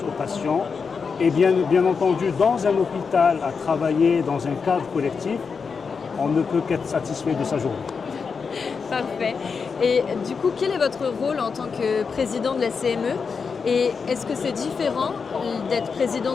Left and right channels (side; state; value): right; quieter; 5.5 dB